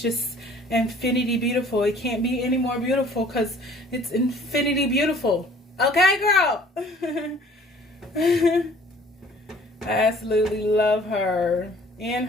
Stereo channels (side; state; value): both; normal; correlation 0.53